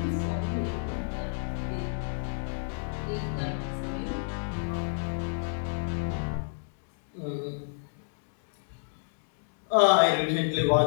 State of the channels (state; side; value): silent; right; digital silence